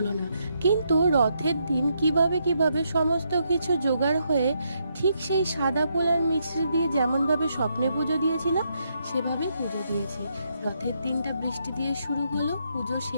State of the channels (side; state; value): both; inverted; correlation -0.78